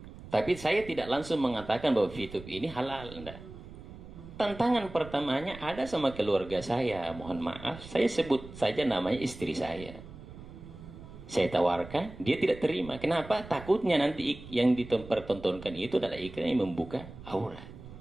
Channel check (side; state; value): right; noise; rumble, 15 dB below the sound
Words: Tapi saya tidak langsung mengatakan bahwa YouTube ini halal, enggak. Tantangan pertamanya ada sama keluarga saya. Mohon maaf, saya sebut saja namanya istri saya. Saya tawarkan, dia tidak terima. Kenapa? Takutnya nanti yang dipertontonkan itu adalah iklan yang membuka aurat.